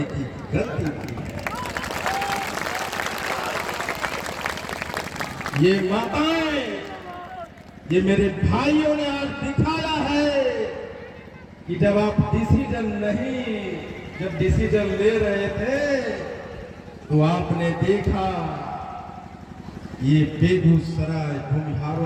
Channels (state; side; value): identical; both; correlation 1.00